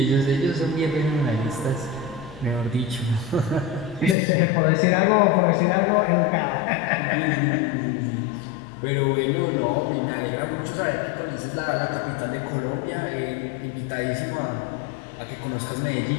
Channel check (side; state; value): right; drops out; at 4.2 s